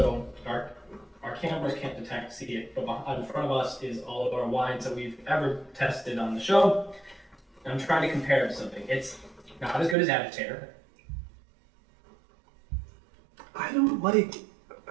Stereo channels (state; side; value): drops out; left; at 10.0 s